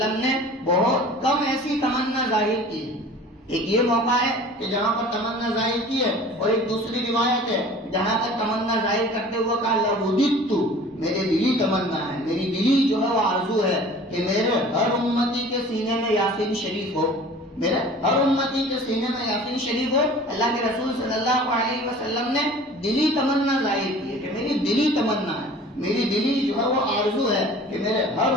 نے بہت کم ایسی تمنا ظاہر کی۔ ایک یہ موقع ہے کہ جہاں پر تمنا ظاہر کی ہے، اور ایک دوسری روایت ہے جہاں پر تمنا ظاہر کرتے ہوئے کہا لوددت، میرے دلی تمنا ہے، میری دلی جو ہے وہ آرزو ہے کہ میرے ہر امتی کے سینے میں یاسین شریف ہو، میرے ہر امتی کے سینے میں یاسین شریف ہو۔ اللہ کے رسول صلی اللہ علیہ وسلم نے دلی تمنا ظاہر کی ہے کہ میری دلی تمنا ہے، میری دلی جو ہے وہ آرزو ہے کہ میرے ہر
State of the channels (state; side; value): normal; both; correlation 0.44